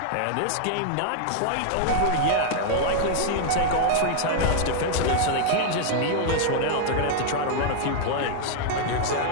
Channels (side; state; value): both; different; correlation 0.00